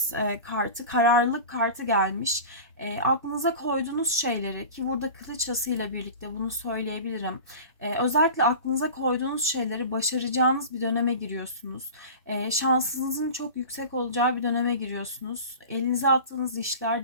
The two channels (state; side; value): inverted; both; correlation -0.34